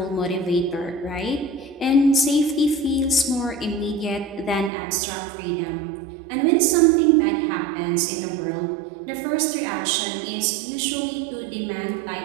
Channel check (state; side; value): drops out; left; at 4.7 s